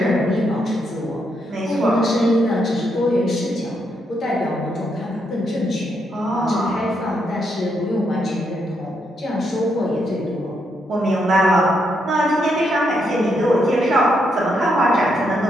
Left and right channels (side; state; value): both; normal; correlation 0.78